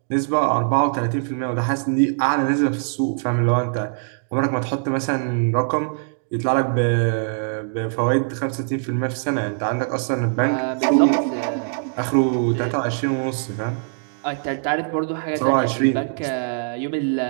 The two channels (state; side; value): silent; left; digital silence